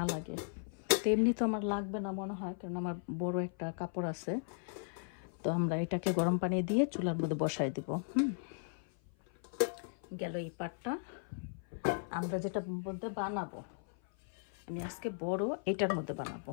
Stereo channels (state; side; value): silent; right; 53 dB below the other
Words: লাগে। তো এমনি তো আমার লাগবে না মনে হয়, কারণ আমার বড় একটা কাপড় আছে। তো আমরা এটাকে গরম পানি দিয়ে চুলার মধ্যে বসাই দেবো। গেল এই পাটটা। আমরা যেটা মধ্যে বানাবো, আমি আজকে বড় এটার মধ্যে